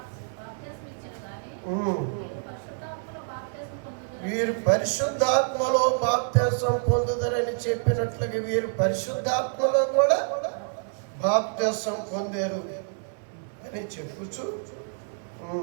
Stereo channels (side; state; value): left; silent; 60 dB below the other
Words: వీరు పరిశుద్ధాత్మలో బాప్తిసం పొందుదరని చెప్పినట్లుగా వీరు పరిశుద్ధాత్మలో కూడా బాప్తిసం పొందారు అని చెప్పుచు